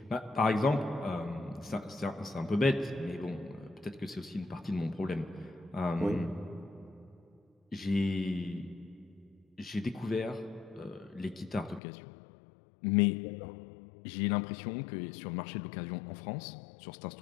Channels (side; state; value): right; drops out; at 11.8 s